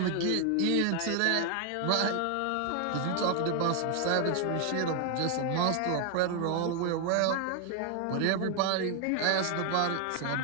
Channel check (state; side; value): different; both; correlation 0.00